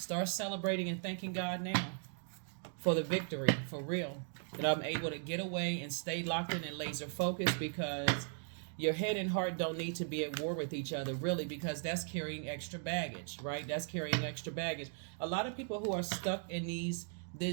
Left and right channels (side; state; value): left; silent; 53 dB below the other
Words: celebrating and thanking God now for the victory, for real. That I'm able to get away and stay locked in and laser focused, because your head and heart don't need to be at war with each other, really, because that's carrying extra baggage, right? That's carrying extra baggage. A lot of people who are stuck in